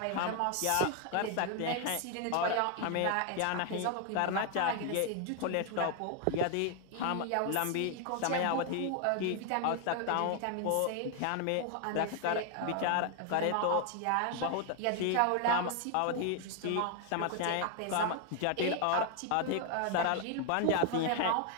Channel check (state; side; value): different; both; correlation 0.00